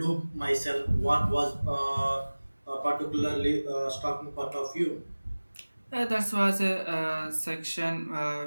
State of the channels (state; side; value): inverted; both; correlation -1.00